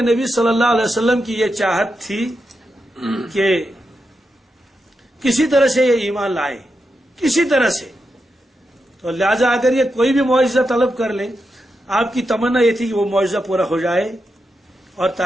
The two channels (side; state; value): both; normal; correlation 0.86